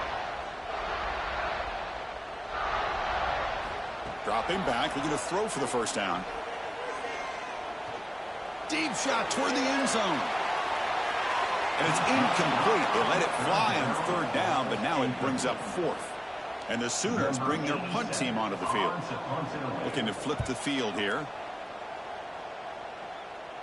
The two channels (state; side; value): identical; both; correlation 1.00